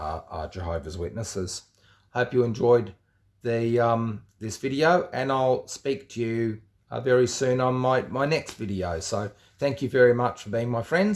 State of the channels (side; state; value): both; identical; correlation 1.00